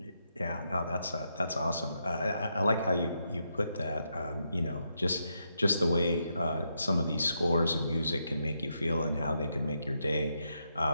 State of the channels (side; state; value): both; inverted; correlation -0.81